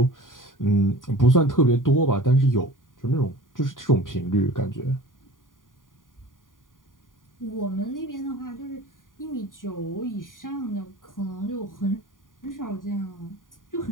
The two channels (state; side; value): late; right; 0.89 ms